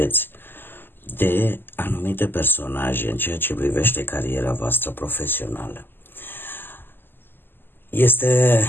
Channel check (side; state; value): right; late; 0.096 ms